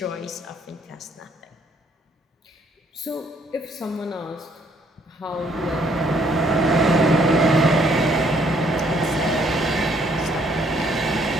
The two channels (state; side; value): normal; both; correlation 0.66